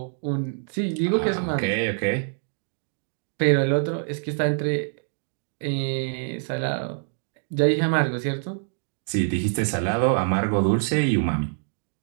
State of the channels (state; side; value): silent; left; digital silence